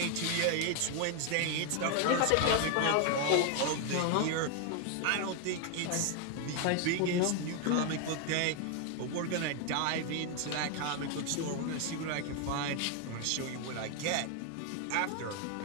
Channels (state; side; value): different; both; correlation 0.01